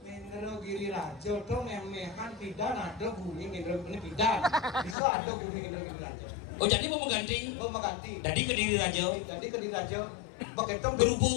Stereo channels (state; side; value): drops out; right; at 5.0 s